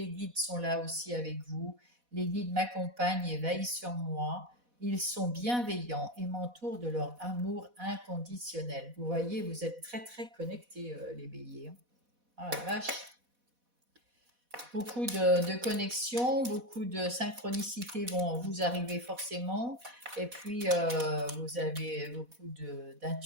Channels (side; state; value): left; late; 4.1 ms